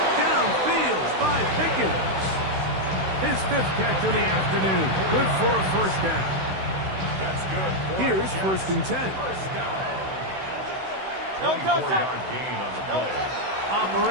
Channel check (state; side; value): late; left; 16 ms